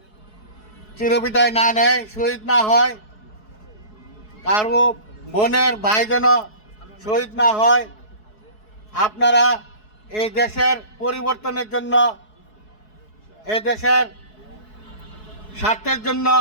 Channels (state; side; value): late; right; 4.7 ms